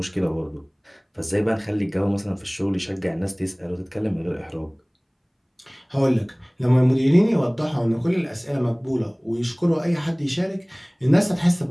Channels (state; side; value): identical; both; correlation 1.00